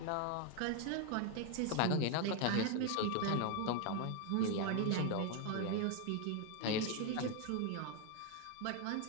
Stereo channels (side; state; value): both; different; correlation 0.01